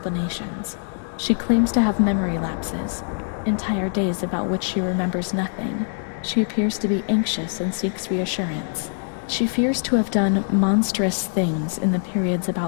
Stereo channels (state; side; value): silent; right; digital silence